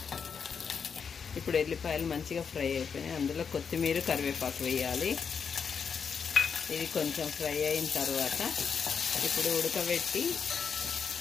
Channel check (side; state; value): right; quieter; 6.4 dB